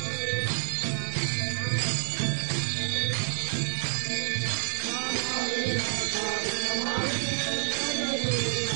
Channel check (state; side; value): silent; left; digital silence